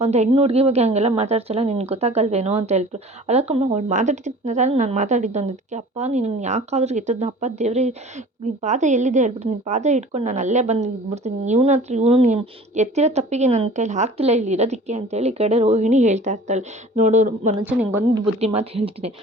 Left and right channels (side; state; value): both; normal; correlation 0.45